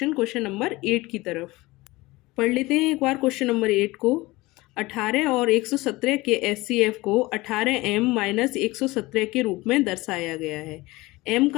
नंबर 8 की तरफ। पढ़ लेते हैं एक बार क्वेश्चन नंबर 8 को। 18 और 117 के एचसीएफ को 18m माइनस 117 के रूप में दर्शाया गया है। m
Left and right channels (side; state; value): right; quieter; 20.8 dB